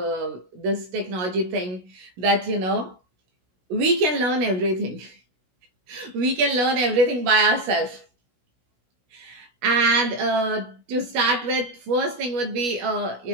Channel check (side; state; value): left; late; 17 ms